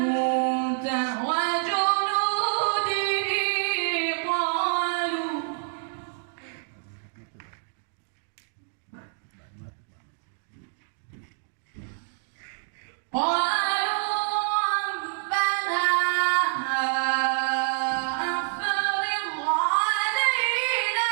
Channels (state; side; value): silent; left; digital silence